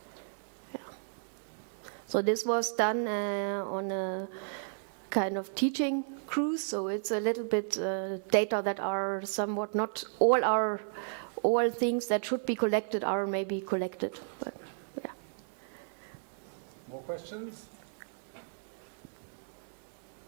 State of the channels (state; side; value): silent; left; digital silence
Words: Yeah. So this was done on a kind of teaching cruise. So it's a little bit data that are somewhat not all things that should be collected are maybe collected. But, yeah. More questions?